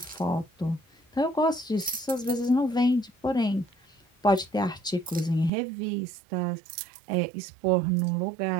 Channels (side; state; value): left; drops out; at 5.5 s